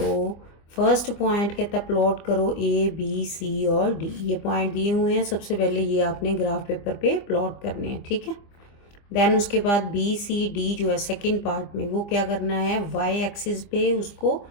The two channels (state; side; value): late; right; 25 ms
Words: फर्स्ट पॉइंट कहता है प्लॉट करो ए बी सी और डी। ये पॉइंट दिए हुए हैं, सबसे पहले ये आपने ग्राफ पेपर पे प्लॉट करने हैं, ठीक है। देन उसके बाद बी सी डी जो है सेकंड पार्ट में, वो क्या करना है, वाई एक्सिस पे उसको